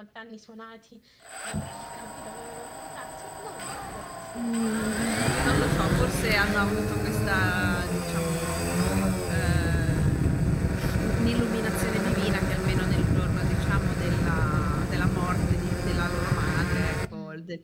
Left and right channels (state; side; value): identical; both; correlation 1.00